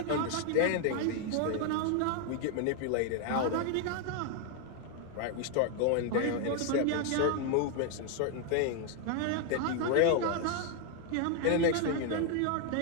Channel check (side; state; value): both; different; correlation 0.00